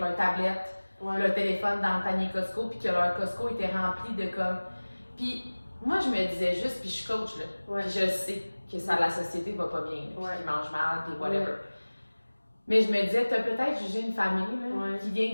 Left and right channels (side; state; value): both; inverted; correlation -1.00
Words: tablette, leur téléphone dans le panier Costco, puis que leur Costco était rempli de comme. Puis moi, je me disais juste, puis je suis coach, là, puis je sais que ça, la société va pas bien, puis qu'ils mangent mal, puis whatever. Mais je me disais, t'as peut-être jugé une famille là, qui